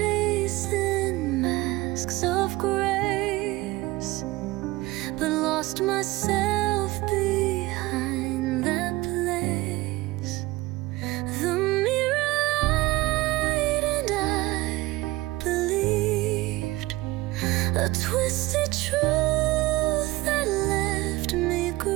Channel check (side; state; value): left; quieter; 19.5 dB